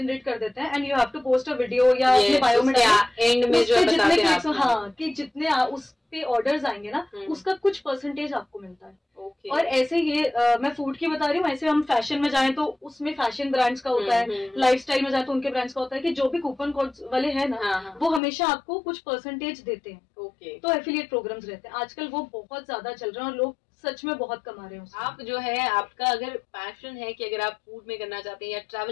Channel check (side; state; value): right; drops out; at 18.2 s